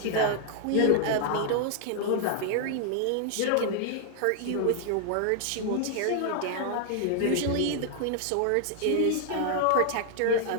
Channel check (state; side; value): different; both; correlation 0.00